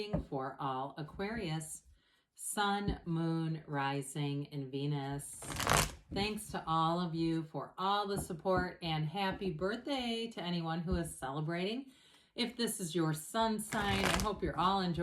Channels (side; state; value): both; identical; correlation 1.00